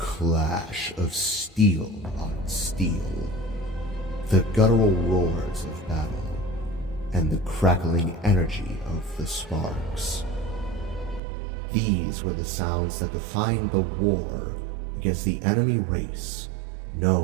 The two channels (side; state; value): left; drops out; at 11.2 s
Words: of steel on steel, the guttural roars of battle, and the crackling energy of the sparks. These were the sounds that defined the war against the enemy race